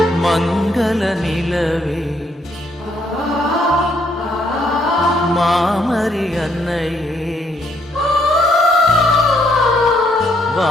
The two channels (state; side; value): normal; both; correlation 0.71